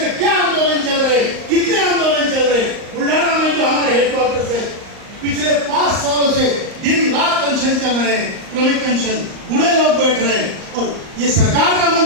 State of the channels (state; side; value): late; left; 38 ms